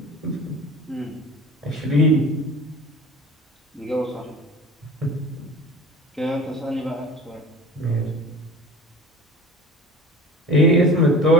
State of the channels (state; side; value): normal; both; correlation 0.39